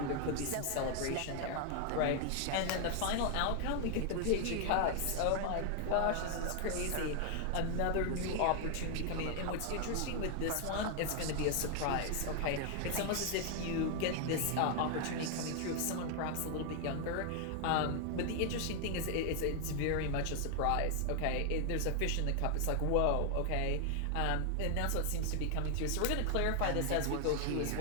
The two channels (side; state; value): both; different; correlation 0.00